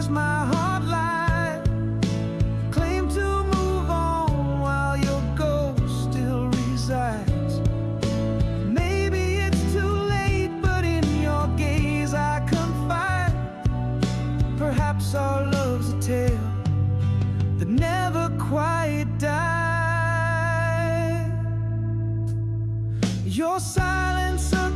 my heart lied? Claim to move on while your ghost still resides. Maybe it's too late, but in your gaze I confide. Perhaps our love's a tale that never quite died. Your silence a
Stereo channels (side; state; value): both; identical; correlation 1.00